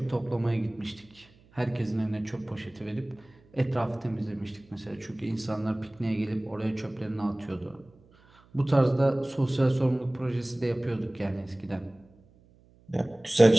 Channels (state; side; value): noise; right; hum, 29 dB below the sound